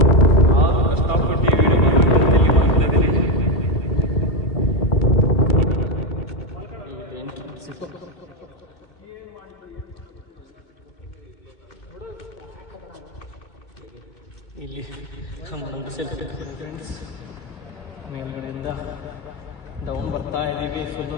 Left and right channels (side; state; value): right; late; 2.3 ms